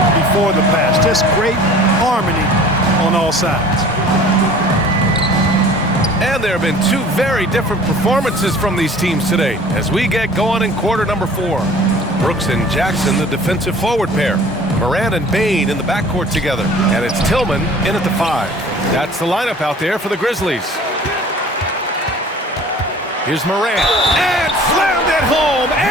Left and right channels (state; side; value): normal; both; correlation 0.47